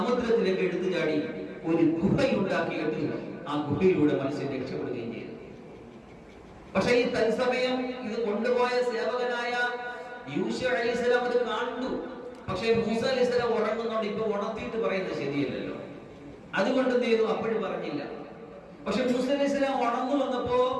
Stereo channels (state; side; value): identical; both; correlation 1.00